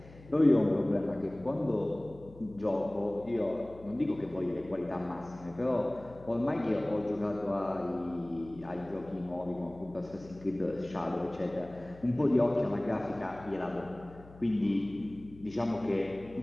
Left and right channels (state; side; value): noise; left; hum, 20 dB below the sound